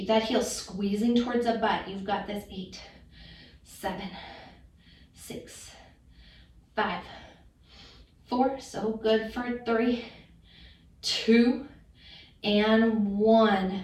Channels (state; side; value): identical; both; correlation 1.00